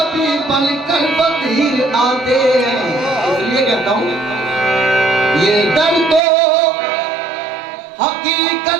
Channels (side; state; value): left; drops out; at 6.2 s